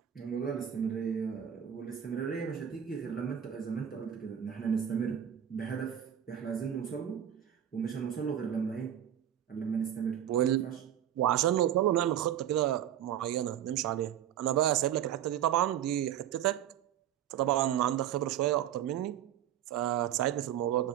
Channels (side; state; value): left; quieter; 10.4 dB